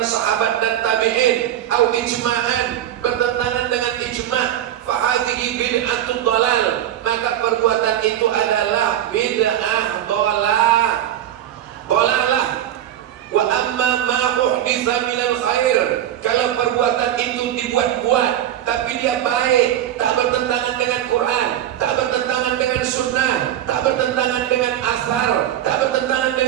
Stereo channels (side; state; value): left; quieter; 11.5 dB